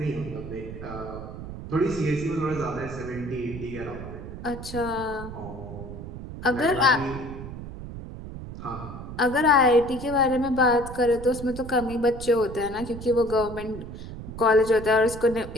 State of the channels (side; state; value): right; noise; rumble, 10 dB below the sound